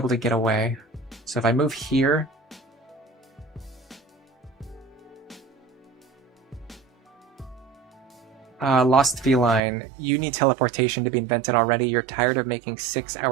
to get away. So if I move here... Lost Feline, you need teleportation to be invented already. You're tired of making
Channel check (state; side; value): drops out; left; at 9.6 s